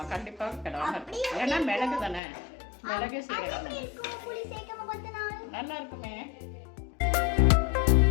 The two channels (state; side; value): drops out; right; at 2.2 s